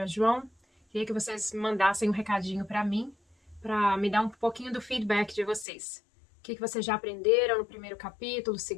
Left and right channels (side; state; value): right; drops out; at 5.7 s